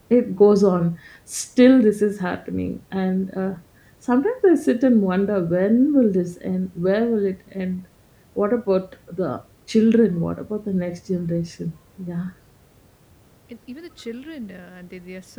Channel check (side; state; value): both; identical; correlation 1.00